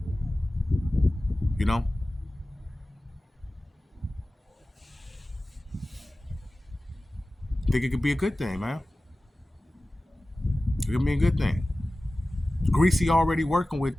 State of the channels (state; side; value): normal; both; correlation 0.96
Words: I think it could be a good thing, man. It could be a good thing. Greasy already working with